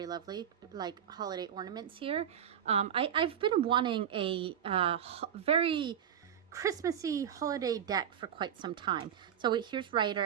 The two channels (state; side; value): quieter; left; 9.2 dB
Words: lovely, like holiday ornaments here. I've been wanting a very Christmassy holiday deck for quite some time. So here's